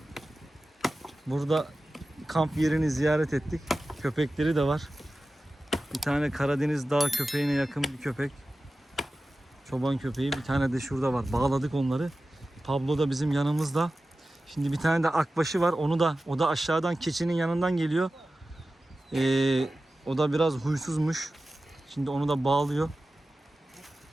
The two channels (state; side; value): normal; both; correlation 0.95